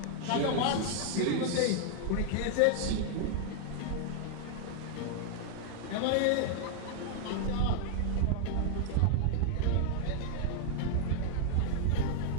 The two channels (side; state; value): both; different; correlation 0.00